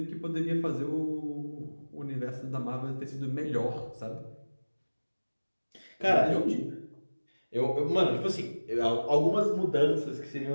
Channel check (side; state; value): both; inverted; correlation -1.00